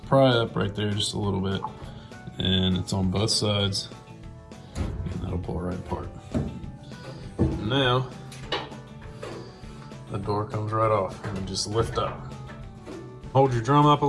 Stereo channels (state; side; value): identical; both; correlation 1.00